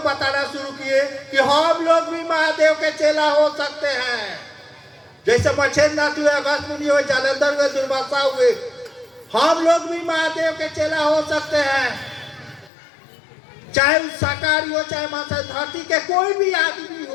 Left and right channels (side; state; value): right; drops out; at 12.7 s